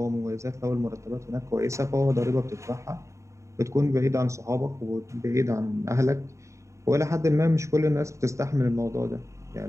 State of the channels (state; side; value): late; left; 0.14 ms